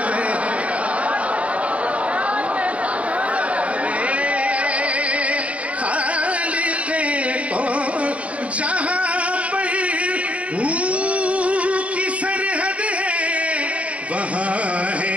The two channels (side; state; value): left; late; 0.065 ms